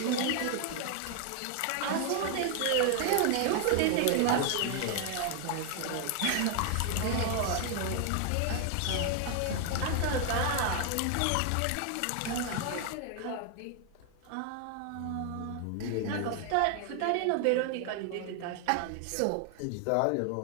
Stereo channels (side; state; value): both; different; correlation 0.00